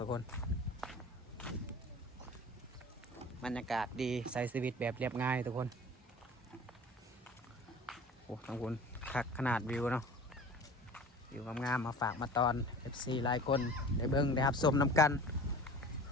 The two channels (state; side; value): normal; both; correlation 0.41